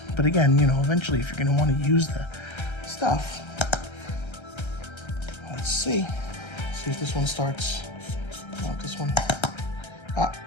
But again, you know, eventually if you're gonna wanna use the stuff, let's see. See if this one starts. No, this one.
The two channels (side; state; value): right; late; 1.3 ms